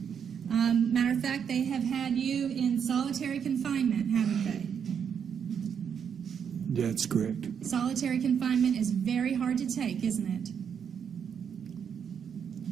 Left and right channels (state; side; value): quieter; left; 7.5 dB